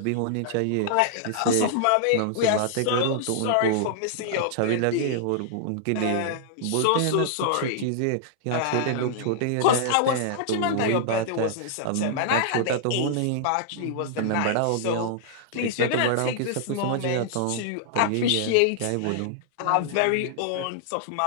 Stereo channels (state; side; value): different; both; correlation -0.01